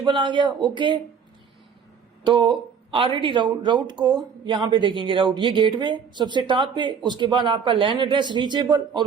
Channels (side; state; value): left; quieter; 6.7 dB